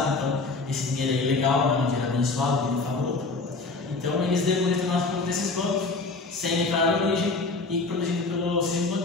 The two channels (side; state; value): right; quieter; 3.7 dB